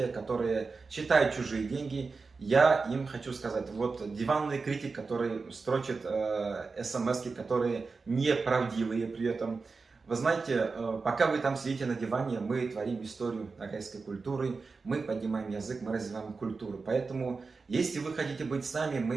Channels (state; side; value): quieter; left; 4.4 dB